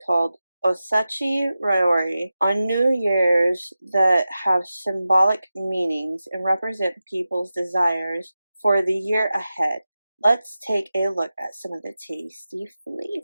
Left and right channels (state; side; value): inverted; both; correlation -0.93